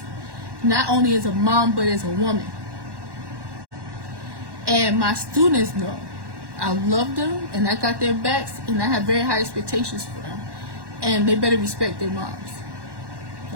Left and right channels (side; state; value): left; late; 1.1 ms